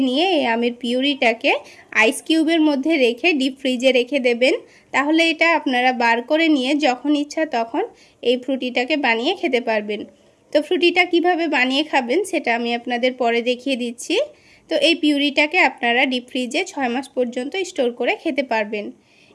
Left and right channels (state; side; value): identical; both; correlation 1.00